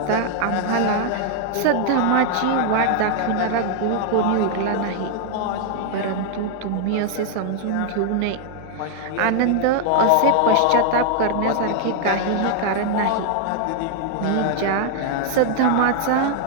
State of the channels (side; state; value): both; different; correlation 0.00